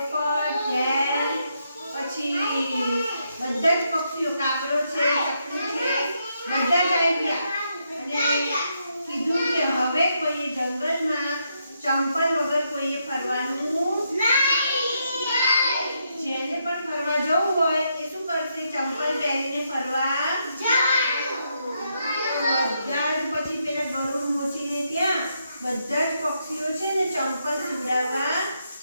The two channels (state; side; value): inverted; both; correlation -0.79